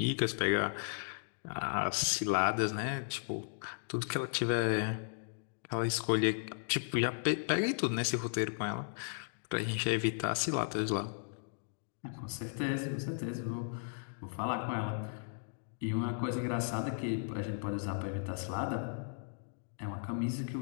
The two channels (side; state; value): right; silent; digital silence